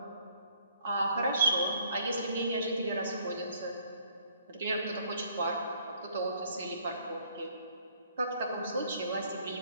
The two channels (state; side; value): inverted; both; correlation -0.63